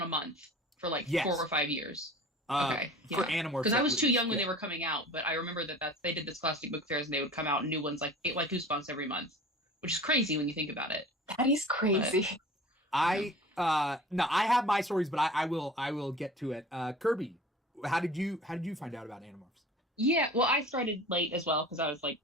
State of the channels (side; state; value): both; normal; correlation 0.41